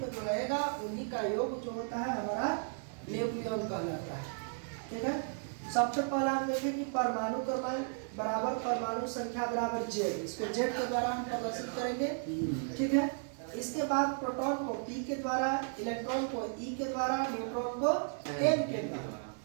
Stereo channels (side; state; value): left; silent; 55 dB below the other